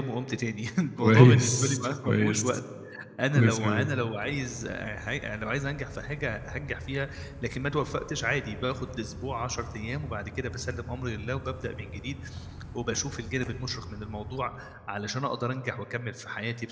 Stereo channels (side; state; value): both; identical; correlation 1.00